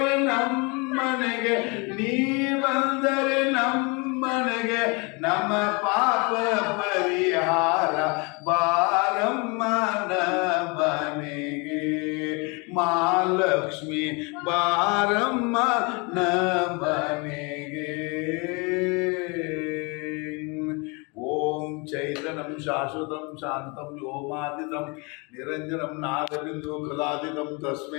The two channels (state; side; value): quieter; right; 30.0 dB